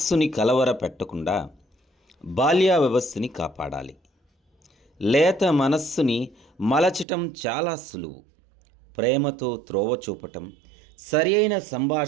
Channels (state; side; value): drops out; left; at 7.1 s